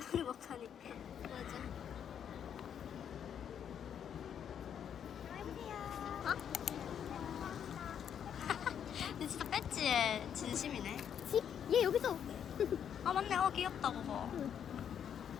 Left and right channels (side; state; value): right; quieter; 8.6 dB